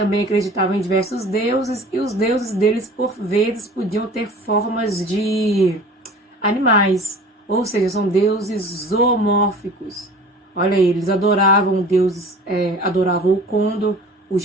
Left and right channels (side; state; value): both; normal; correlation 0.43